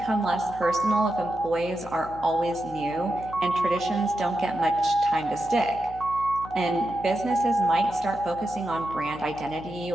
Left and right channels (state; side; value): noise; left; hum, 17 dB below the sound